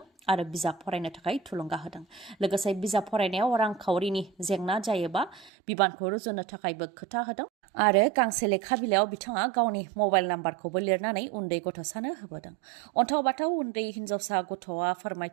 आरो बिजाब फरायनो थाखाय थुलुंगा होदों लोगोसे बिजाब फरायनायाव रांखावरिनि जेंना जायोबा बिबानखौ रुजुनो थाखायबो खोथा होदों आरो गांसे लेखा बिलाइयाव बिथाङा गावनि मबाइल नाम्बारखौबो लिरनानै उन्दै गथ'सानो होबोदों अन्थाव बाथाव उन्दै हिन्जावसा गथ'आ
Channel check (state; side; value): drops out; left; at 5.5 s